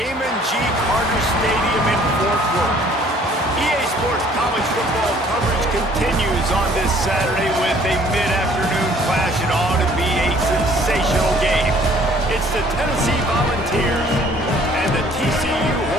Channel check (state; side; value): normal; both; correlation 0.57